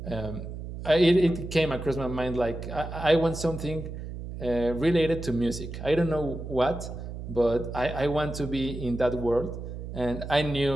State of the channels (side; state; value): right; noise; hum, 8 dB below the sound